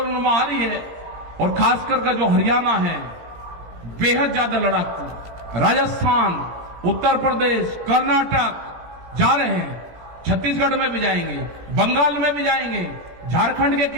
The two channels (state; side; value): late; left; 17 ms